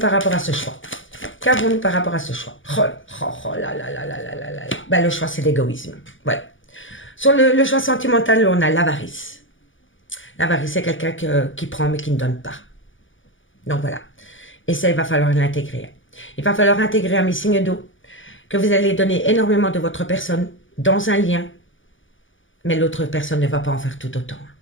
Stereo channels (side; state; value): right; late; 0.56 ms